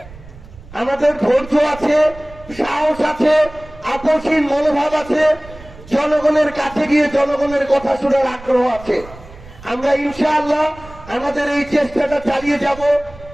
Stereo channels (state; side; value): noise; right; rumble, 19 dB below the sound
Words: আমাদের ধৈর্য আছে, সাহস আছে, আপসহীন মনোভাব আছে, জনগণের কাছে গিয়ে জনগণের কথা শোনার আগ্রহ আছে। আমরা ইনশাআল্লাহ আমাদের এই চেষ্টাটা চালিয়ে যাব।